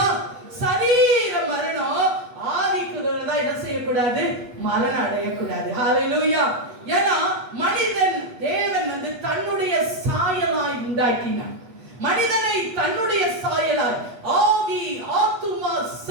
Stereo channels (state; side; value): late; left; 8.2 ms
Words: சரீர மரணம். ஆவிக்குள்ளதான் என்ன செய்யக்கூடாது, மரணம் அடையக்கூடாது. ஹல்லேலூயா. ஏன்னா மனிதன் தேவன் தன்னுடைய சாயலாய் உண்டாக்கினார். மனிதனை தன்னுடைய சாயலாய், ஆவி, ஆத்துமா,